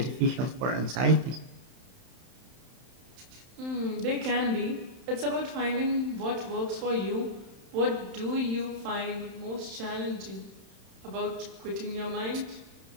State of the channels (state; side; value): late; left; 31 ms